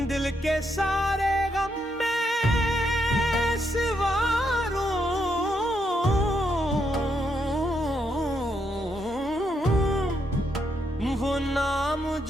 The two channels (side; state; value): both; normal; correlation 0.78